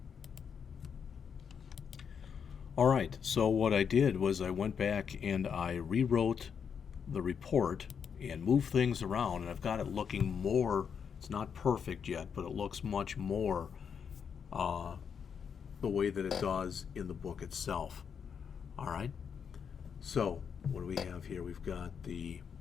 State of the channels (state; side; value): quieter; right; 7.0 dB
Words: All right, so what I did was I went back and I rewrote the report and moved things around, and I've got it looking more, it's not perfect yet, but it looks much more the way that it does in the book itself. All right, so what do we have here? We've got the